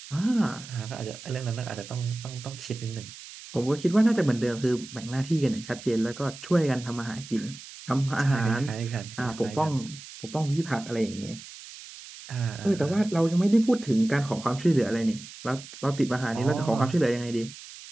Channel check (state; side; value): noise; right; hiss, 15 dB below the sound